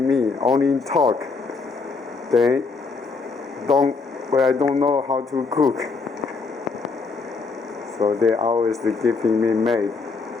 me, only talk. They I don't know how to cook. So they always giving me maid.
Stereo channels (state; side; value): quieter; right; 4.4 dB